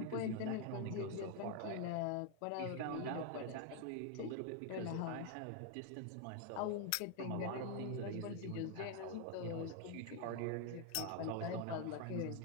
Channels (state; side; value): different; both; correlation 0.01